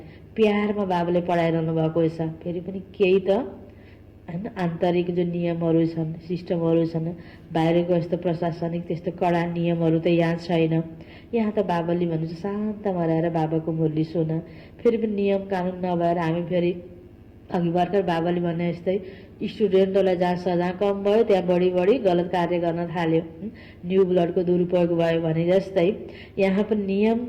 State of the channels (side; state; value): both; identical; correlation 1.00